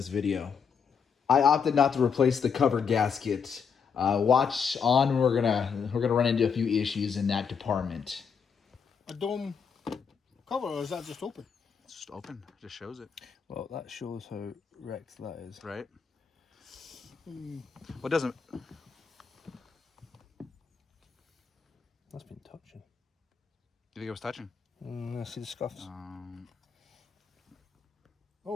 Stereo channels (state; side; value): quieter; right; 6.4 dB